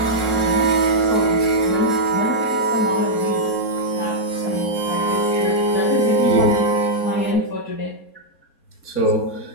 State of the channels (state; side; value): late; right; 4.3 ms